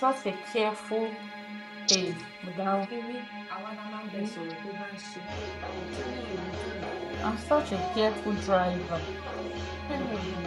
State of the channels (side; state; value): both; identical; correlation 1.00